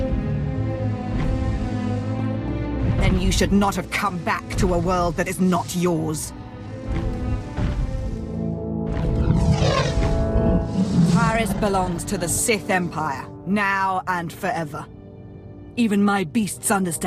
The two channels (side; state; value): both; identical; correlation 1.00